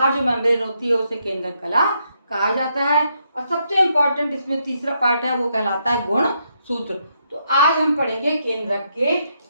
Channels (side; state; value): both; inverted; correlation -0.78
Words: जो मेम्ब्रेन होती है उसे केंद्रक कला कहा जाता है। और सबसे इम्पोर्टेंट इसमें तीसरा पार्ट है वो कहलाता है गुण सूत्र। तो आज हम पढ़ेंगे केंद्रक के